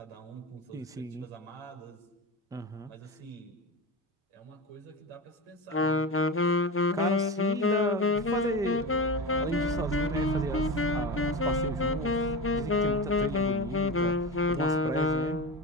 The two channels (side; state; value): both; normal; correlation 0.23